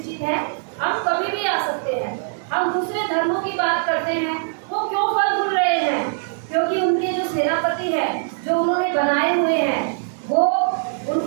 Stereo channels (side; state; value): left; silent; digital silence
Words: है, हम कभी भी आ सकते हैं। हम दूसरे धर्मों की बात करते हैं, वो क्यों फल फूल रहे हैं? क्योंकि उनके जो सेनापति है, जो उन्होंने बनाए हुए हैं, वो